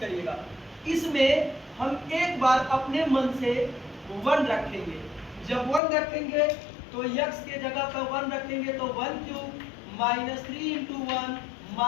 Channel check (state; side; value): drops out; right; at 5.8 s